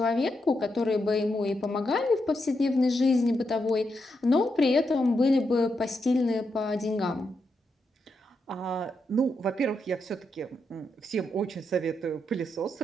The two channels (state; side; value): normal; both; correlation 0.83